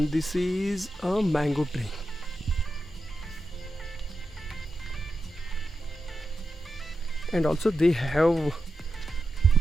this is a mango tree. And also they have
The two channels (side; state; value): both; normal; correlation 0.90